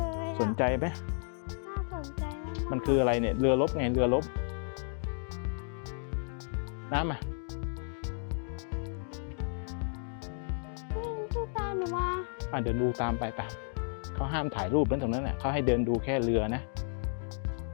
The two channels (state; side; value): silent; right; 56 dB below the other